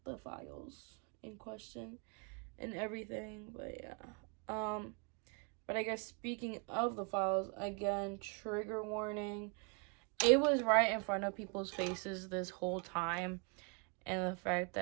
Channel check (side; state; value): left; quieter; 35.6 dB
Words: the files, in question and everything. But yeah. But I guess speaking of the files, again, trigger warning. It was right in front of people's faces this whole time. And the fact